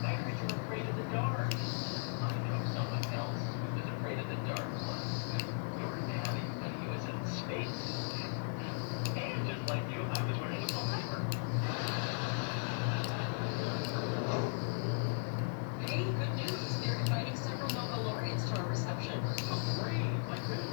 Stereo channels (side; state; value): right; silent; digital silence